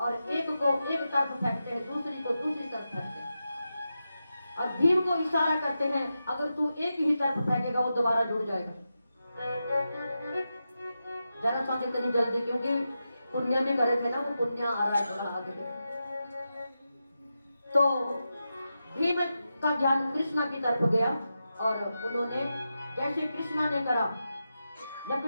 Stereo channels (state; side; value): inverted; both; correlation -0.90